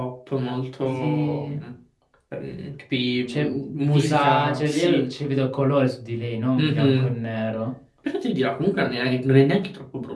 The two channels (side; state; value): both; identical; correlation 1.00